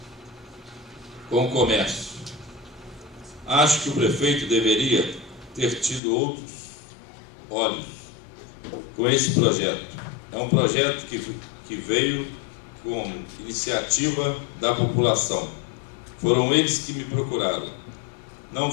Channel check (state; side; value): drops out; right; at 6.0 s